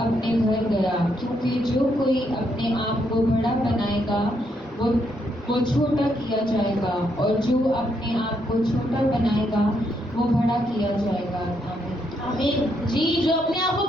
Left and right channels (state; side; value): normal; both; correlation 0.76